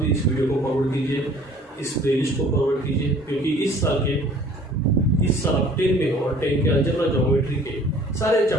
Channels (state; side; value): normal; both; correlation 0.52